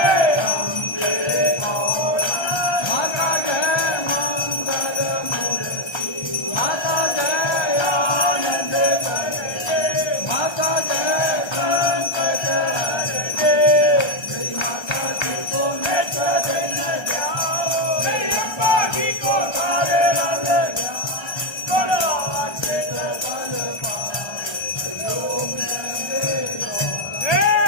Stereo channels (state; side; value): late; right; 1.3 ms